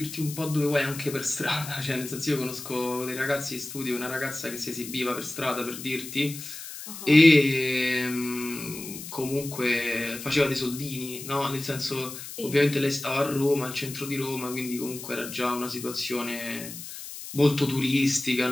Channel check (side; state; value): left; noise; hiss, 11 dB below the sound